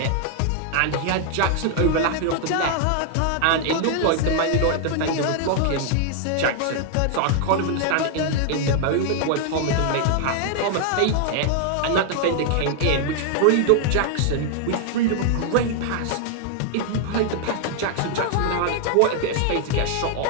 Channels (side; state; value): both; different; correlation 0.00